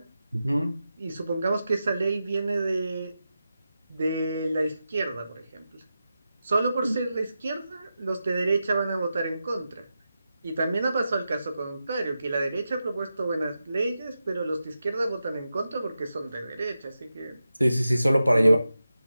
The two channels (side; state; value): both; inverted; correlation -0.90